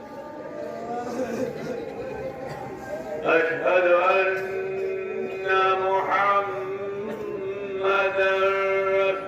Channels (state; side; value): identical; both; correlation 1.00